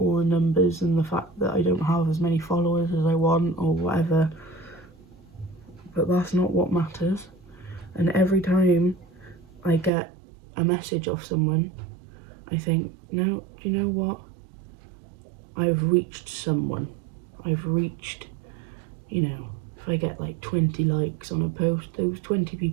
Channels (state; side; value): drops out; left; at 9.9 s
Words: the numbers and the fact that I don't have as many followers as I want or whatever, but that's not what matters. And every time I get a message off someone, I think, no, do you know what? I've reached someone. I've reached, you know, if I get like 20 likes on a post, those 20